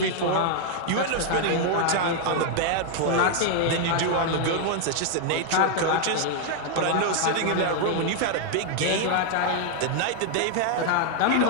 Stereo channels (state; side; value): different; both; correlation 0.00